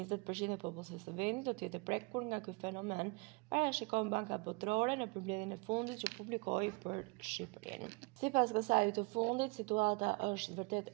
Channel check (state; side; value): quieter; left; 28.1 dB